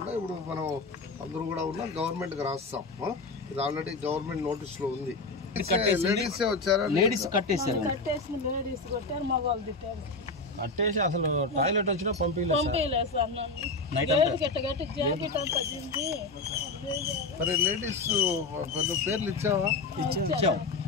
ఇప్పుడు మనం అందరూ కూడా ఉన్నాం, గవర్నమెంట్కి రాస్తాం. ఇది ఆల్రెడీ గవర్నమెంట్ నోటీస్లో ఉంది. లేడీసే వచ్చారా? లేడీస్ కట్టేసి అసలు టాయిలెట్ వచ్చినా మరి లేడీస్ పేర్లు ఇచ్చావా?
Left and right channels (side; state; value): right; quieter; 3.5 dB